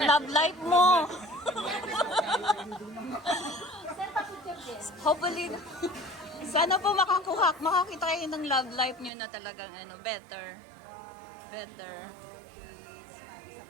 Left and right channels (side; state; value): left; drops out; at 9.1 s